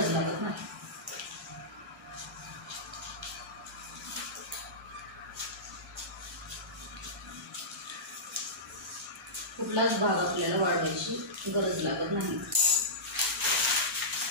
लागत नाही. कुठलाच भाग आपल्याला वाढवायची गरज लागत नाही.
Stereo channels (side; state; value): both; normal; correlation -0.17